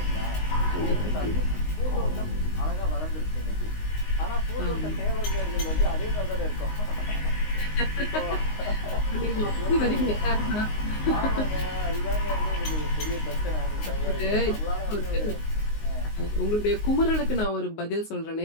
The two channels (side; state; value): right; late; 19 ms